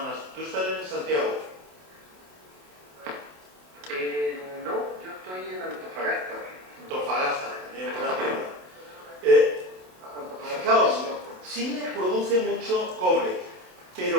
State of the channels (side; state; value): left; late; 27 ms